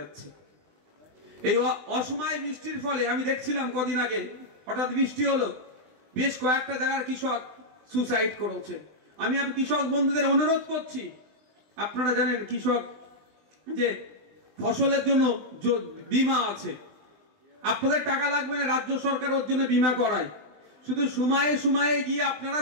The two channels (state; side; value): late; left; 20 ms